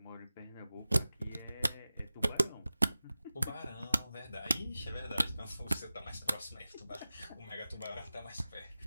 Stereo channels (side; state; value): both; inverted; correlation -0.96